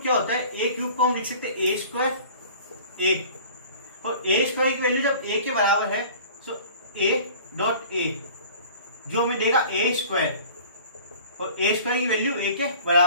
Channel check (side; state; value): both; inverted; correlation -0.45